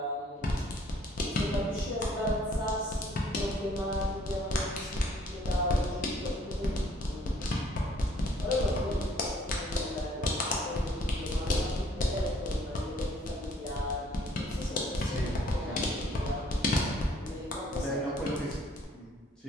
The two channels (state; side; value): normal; both; correlation 0.61